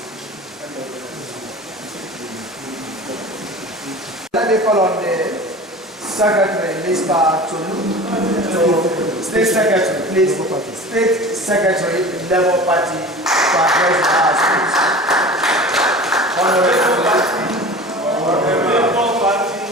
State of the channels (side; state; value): both; normal; correlation 0.37